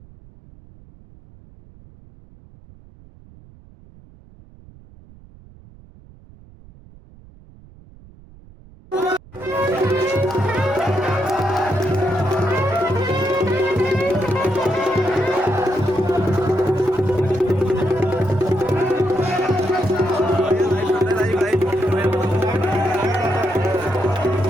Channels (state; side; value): noise; right; rumble, 23 dB below the sound